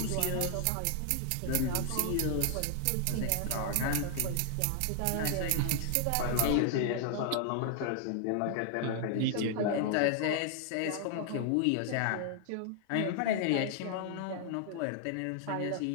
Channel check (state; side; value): different; both; correlation 0.00